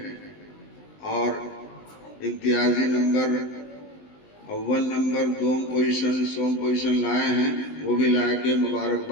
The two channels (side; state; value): right; late; 19 ms